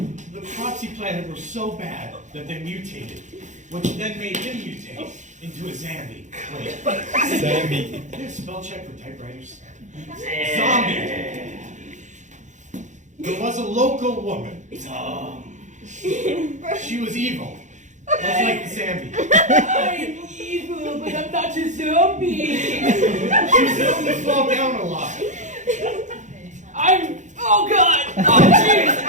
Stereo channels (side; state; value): left; late; 0.35 ms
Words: The crops he planted were so bad that they mutated, which then made him mutate into a zombie. Wait. Zombie. Is there a spell check for typewriters? Zombie. There was a local woman. She was evil. Much like the zombie. I'm evil, but I'm not a zombie. She was known to fall down a lot. Oh god! Oh jeez!